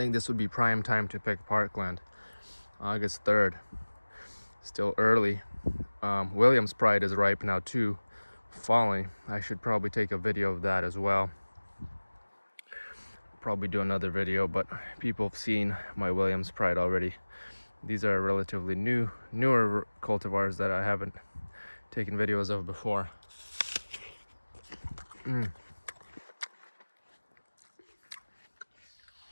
this would be prime time to pick Parkland. August 3rd. Still early. Williams Pride is ripe now too, falling. I should probably take a video of that as well. Probably do another video, but people have seen my Williams Pride already. These are relatively newer cultivars that I haven't taken videos of before.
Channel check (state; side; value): inverted; both; correlation -1.00